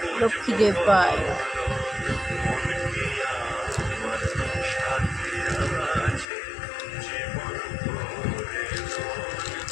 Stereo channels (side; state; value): right; drops out; at 6.2 s